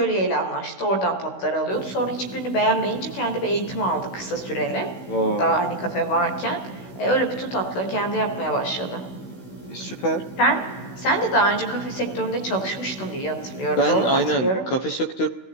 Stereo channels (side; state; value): right; late; 16 ms